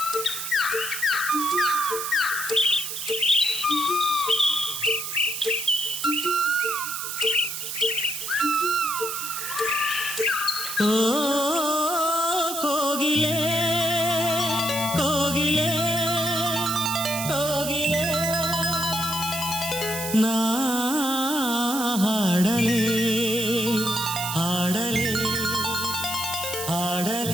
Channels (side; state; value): right; noise; hiss, 5 dB below the sound